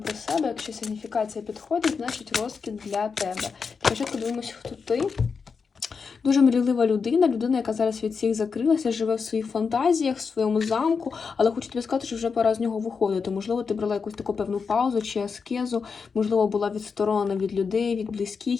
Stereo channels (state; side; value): quieter; right; 5.4 dB